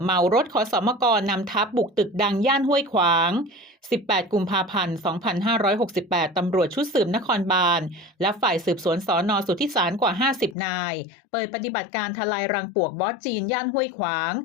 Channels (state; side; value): drops out; right; at 10.6 s